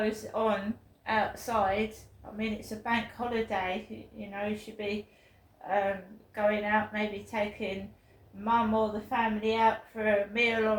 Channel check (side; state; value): both; identical; correlation 1.00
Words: on outside. I mean, it's a bank holiday. You know, you should be going out, maybe taking mum or the family out for a meal